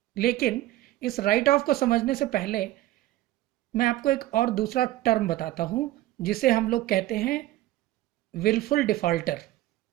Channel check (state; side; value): quieter; left; 15.5 dB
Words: लेकिन इस राइट ऑफ को समझने से पहले मैं आपको एक और दूसरा टर्म बताता हूं, जिसे हम लोग कहते हैं विलफुल डिफॉल्टर।